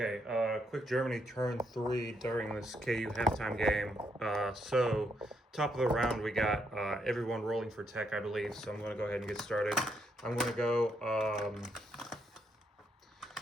quick Germany turn 3 during this KU halftime game. So, top of the round, we got everyone rolling for tech, I believe. So, I'm going to go ahead and get started. I'm going to go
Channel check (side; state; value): both; normal; correlation 0.76